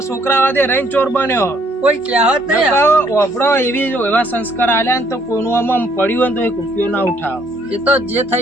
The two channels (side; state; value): both; normal; correlation 0.66